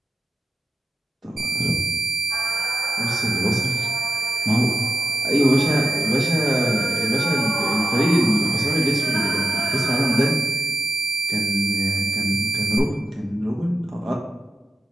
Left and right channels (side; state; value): both; normal; correlation 0.88